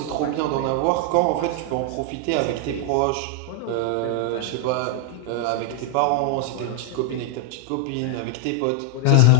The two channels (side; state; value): both; different; correlation 0.00